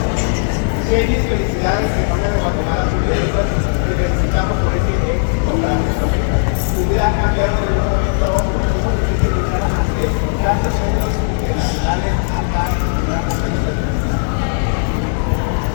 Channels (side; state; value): right; silent; 64 dB below the other